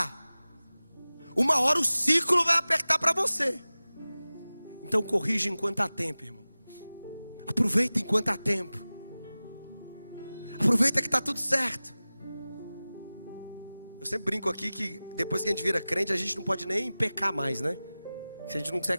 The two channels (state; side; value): inverted; both; correlation -0.97